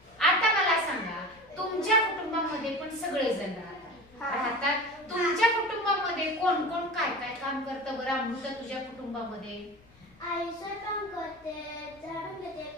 आता मला सांगा तुमच्या कुटुंबामध्ये पण सगळेजण राहतात, तुमच्या कुटुंबामध्ये कोण कोण काय काय काम करतं बरं अमृता तुझ्या कुटुंबामध्ये? आई स्वयंपाक करते, झाडून घेते,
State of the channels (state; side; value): noise; left; rumble, 29 dB below the sound